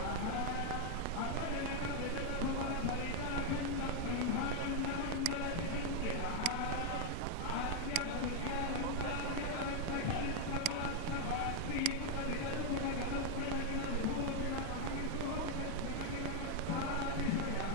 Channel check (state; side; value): different; both; correlation 0.00